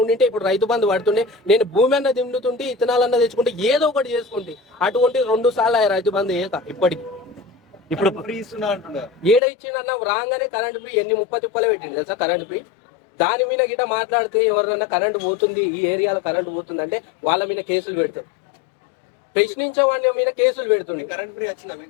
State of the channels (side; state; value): right; drops out; at 9.4 s